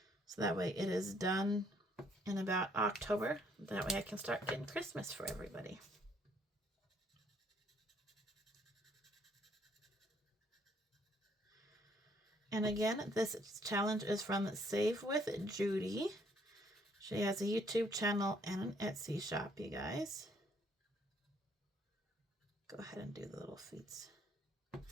So that way it is done in about October. That way I can start getting Christmas for everybody. And again, this challenge is from Save with Judy. She has a YouTube channel and an Etsy shop, you guys. Go ahead and do the little feet.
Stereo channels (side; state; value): both; normal; correlation 0.66